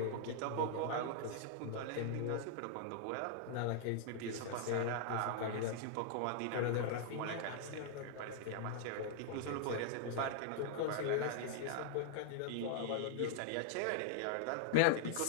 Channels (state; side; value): different; both; correlation -0.01